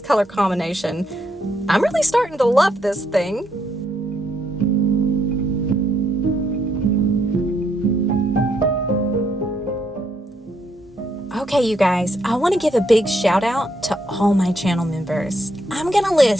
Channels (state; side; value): normal; both; correlation 0.75